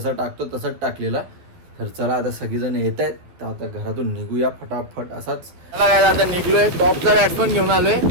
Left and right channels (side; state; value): left; late; 11 ms